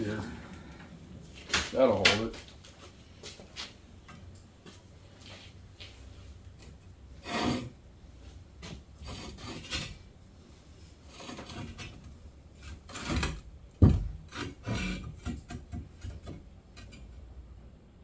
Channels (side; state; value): both; identical; correlation 1.00